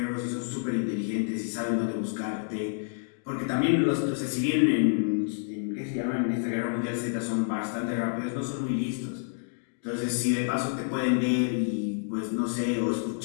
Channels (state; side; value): silent; right; digital silence